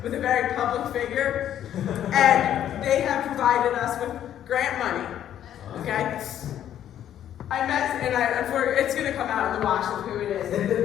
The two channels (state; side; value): quieter; right; 10.8 dB